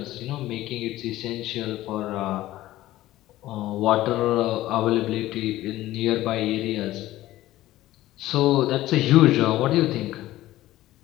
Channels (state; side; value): quieter; right; 15.6 dB